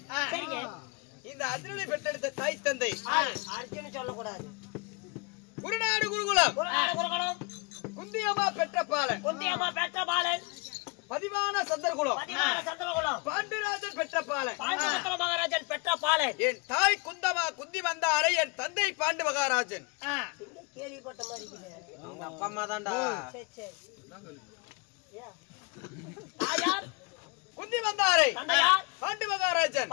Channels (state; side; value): quieter; right; 29.0 dB